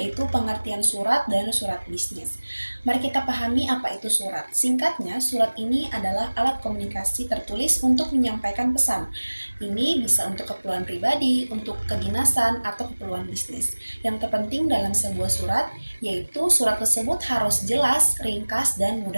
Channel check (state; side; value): inverted; both; correlation -1.00